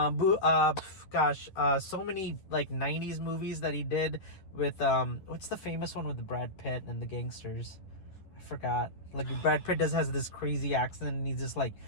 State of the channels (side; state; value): right; late; 10 ms